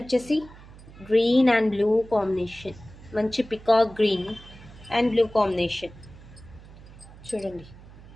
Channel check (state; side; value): noise; right; hum, 19 dB below the sound